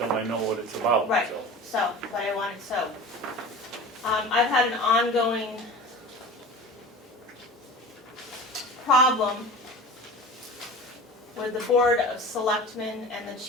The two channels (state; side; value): normal; both; correlation 0.36